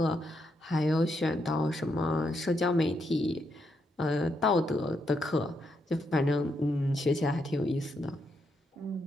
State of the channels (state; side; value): normal; both; correlation 0.80